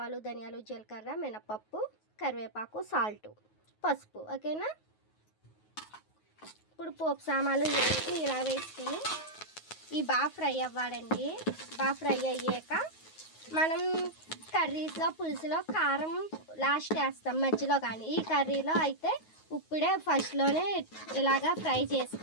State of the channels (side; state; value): right; late; 9.4 ms